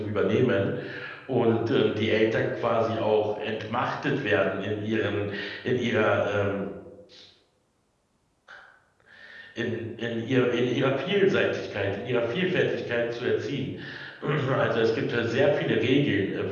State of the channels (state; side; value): identical; both; correlation 1.00